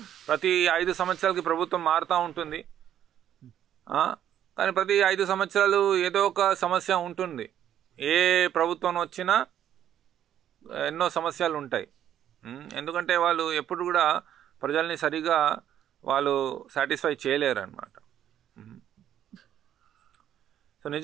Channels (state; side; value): quieter; left; 10.6 dB